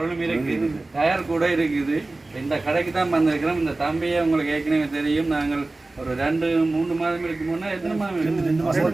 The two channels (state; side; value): quieter; left; 3.1 dB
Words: இருக்குது, டயர் கூட இருக்குது. இந்த கடைக்கு தான் வந்திருக்கிறோம். இந்த தம்பியை உங்களுக்கு ஏற்கனவே தெரியும். நாங்கள் ஒரு 2-3 மாதம் இருக்கு முன்னே, எத்தனை மாதம்